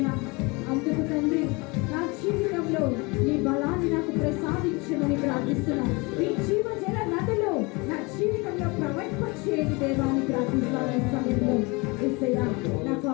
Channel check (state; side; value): quieter; right; 26.9 dB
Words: అందుకు తండ్రి నా జీవితంలో నీ బలాన్ని నాకు ప్రసాదించమని ప్రార్థిస్తున్నాను. ఈ జీవజల నదిలో నా జీవితంలో ప్రవహింపచేయండి దేవాన్ని ప్రార్థిస్తాను. ఈ సమయంలో యేసయ్యా, నాకు